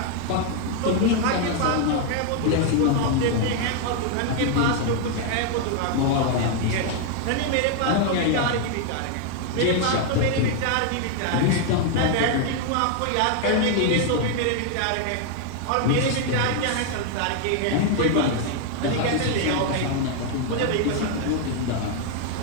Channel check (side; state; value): both; different; correlation 0.00